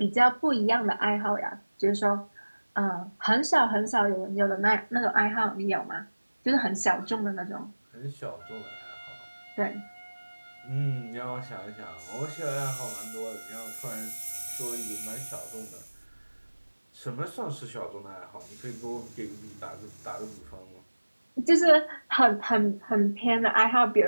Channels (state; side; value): inverted; both; correlation -1.00